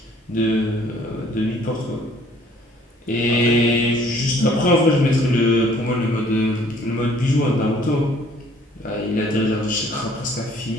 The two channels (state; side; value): normal; both; correlation 0.58